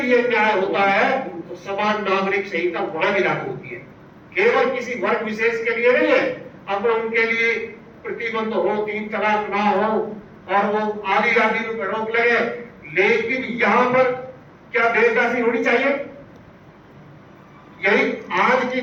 अन्याय होता है तो समान नागरिक संहिता वहां भी लागू होती है। केवल किसी वर्ग विशेष के लिए नहीं है। अब उनके लिए प्रतिबंध हो, 3 तलाक ना हो और वो आदि आदि पर रोक लगे, लेकिन यहाँ पर क्या देवदासी होनी चाहिए? यही आज की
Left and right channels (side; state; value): both; identical; correlation 1.00